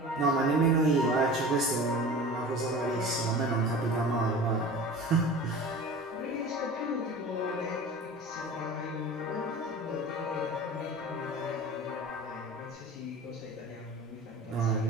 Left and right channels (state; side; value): normal; both; correlation 0.37